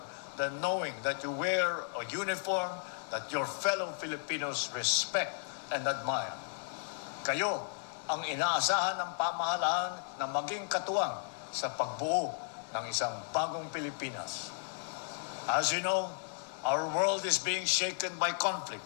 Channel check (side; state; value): right; silent; 55 dB below the other